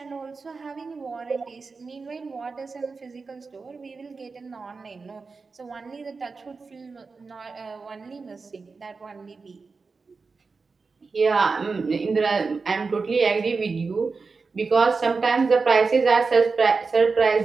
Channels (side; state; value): left; quieter; 4.5 dB